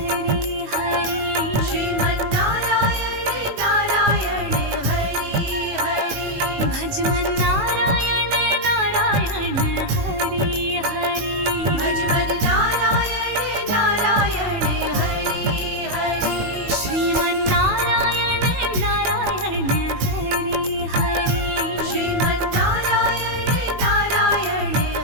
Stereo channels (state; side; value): late; left; 19 ms